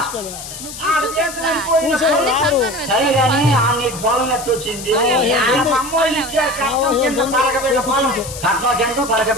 సరే గాని నీకు పొలం ఎట్టు వచ్చింది కట్నం ఎంతో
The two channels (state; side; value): noise; left; hiss, 11 dB below the sound